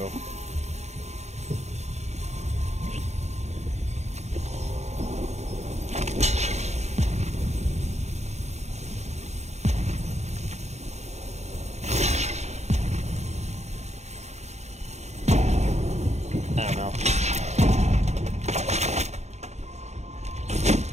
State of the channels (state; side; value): late; left; 0.32 ms